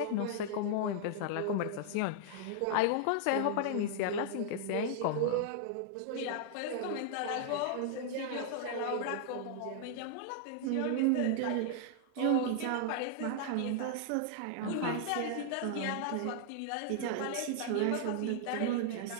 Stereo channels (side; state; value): both; different; correlation -0.01